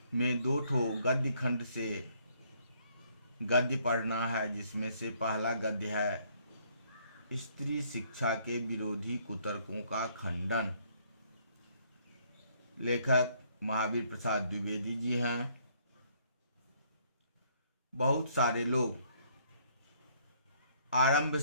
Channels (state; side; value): inverted; both; correlation -0.66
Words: में 2 ठो गद्य खंड से गद्य पढ़ना है, जिसमें से पहला गद्य है स्त्री शिक्षा के विरोधी कुतर्कों का खंडन। लेखक महावीर प्रसाद द्विवेदी जी हैं। बहुत सारे लोग आरंभ